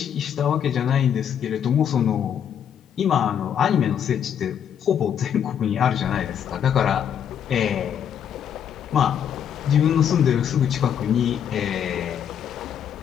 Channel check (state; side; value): quieter; right; 8.8 dB